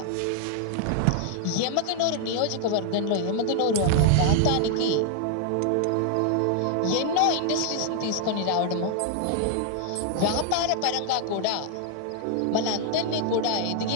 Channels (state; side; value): different; both; correlation 0.00